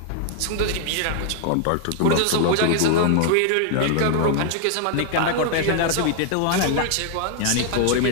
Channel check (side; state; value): both; different; correlation 0.00